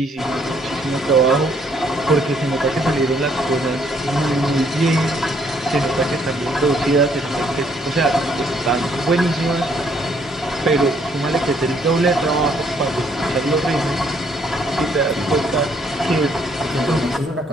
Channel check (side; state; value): both; normal; correlation 0.67